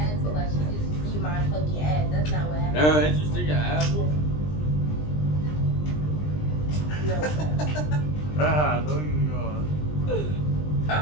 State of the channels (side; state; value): right; late; 20 ms